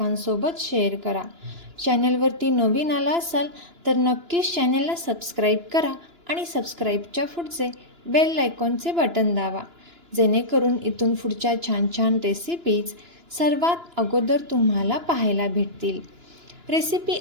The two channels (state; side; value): late; left; 2.9 ms